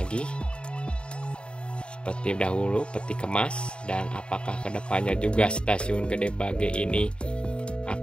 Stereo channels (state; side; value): late; right; 0.053 ms